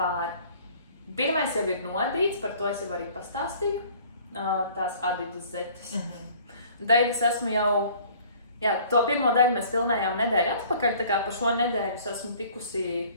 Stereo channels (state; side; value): inverted; both; correlation -0.52